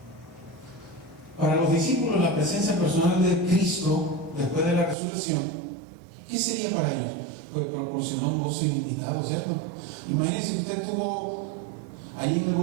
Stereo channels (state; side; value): drops out; left; at 5.0 s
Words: Para los discípulos, la presencia personal de Cristo después de la resurrección, ¿qué sería para ellos? Pues proporcionó un gozo ilimitado, ¿cierto? Imagínense que usted estuvo allí en el